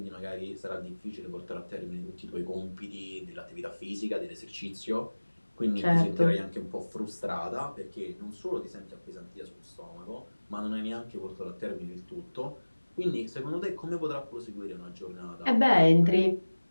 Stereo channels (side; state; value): both; inverted; correlation -1.00